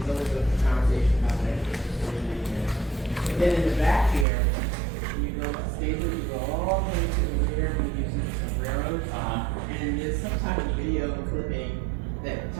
Then in the back here, you go stable, you go all the way to the rear, and you use some railroads. And there's some type of video clipping that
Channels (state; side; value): drops out; left; at 4.2 s